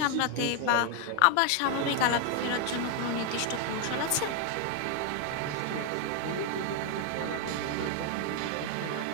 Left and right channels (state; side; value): different; both; correlation 0.00